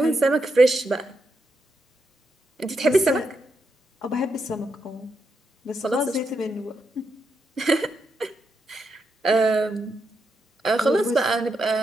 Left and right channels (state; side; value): normal; both; correlation 0.82